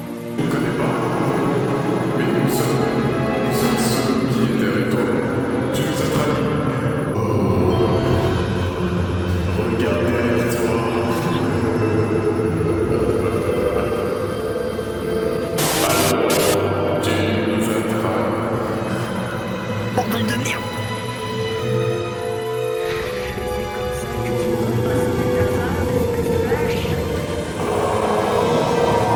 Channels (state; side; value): identical; both; correlation 1.00